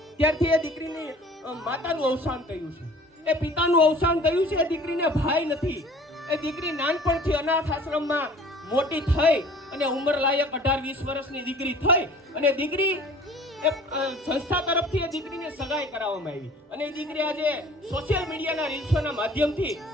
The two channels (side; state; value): both; normal; correlation 0.48